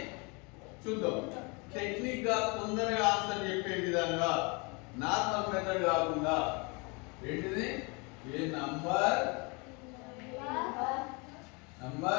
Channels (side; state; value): right; quieter; 30.1 dB